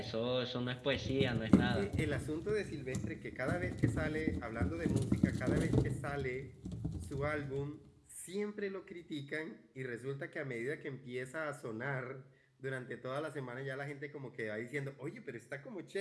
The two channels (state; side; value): identical; both; correlation 1.00